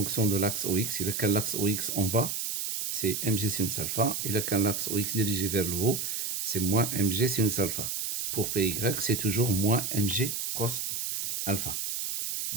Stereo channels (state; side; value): noise; right; hiss, 2 dB below the sound